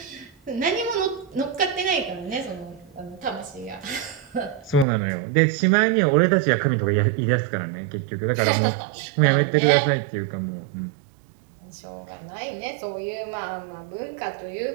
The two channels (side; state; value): left; drops out; at 4.9 s